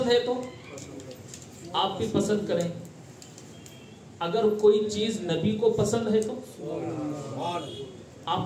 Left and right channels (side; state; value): both; identical; correlation 1.00